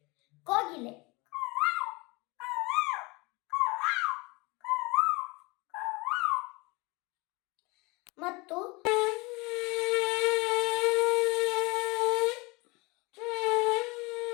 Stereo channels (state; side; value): quieter; right; 25.5 dB